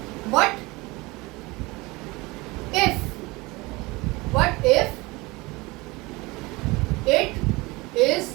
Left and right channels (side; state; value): left; quieter; 23.1 dB